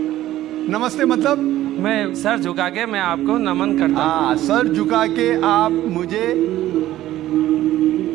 नमस्ते मतलब मैं सर झुका के मैं आपको नमन करता हूँ। हाँ, सर झुका के आप मुझे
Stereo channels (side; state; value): left; quieter; 14.2 dB